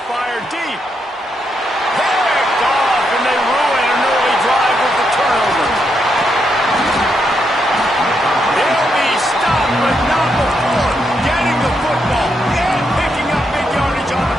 fire deep. Picked off, and they ruin an early drive with the turnover. They'll be stopped, but not before getting the football and picking up big yardage on the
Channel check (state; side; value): normal; both; correlation 0.80